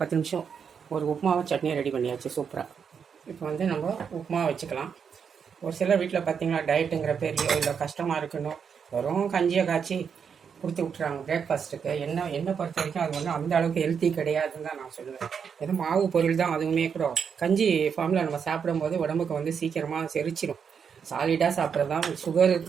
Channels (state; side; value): quieter; left; 6.8 dB